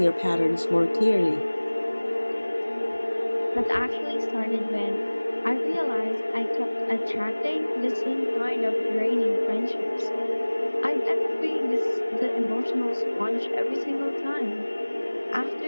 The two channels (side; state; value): both; inverted; correlation -1.00